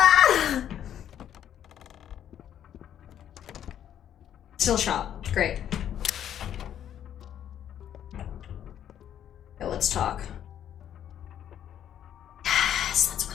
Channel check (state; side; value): quieter; right; 10.1 dB